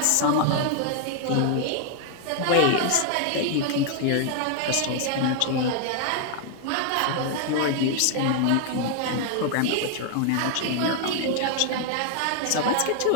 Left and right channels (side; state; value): both; different; correlation 0.00